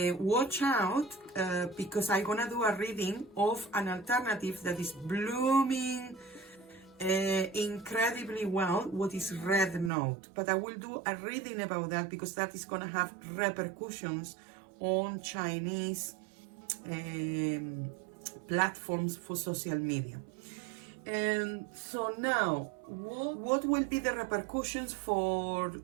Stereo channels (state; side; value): drops out; left; at 9.9 s